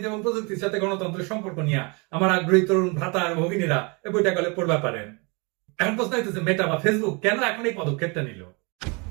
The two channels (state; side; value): quieter; left; 30.3 dB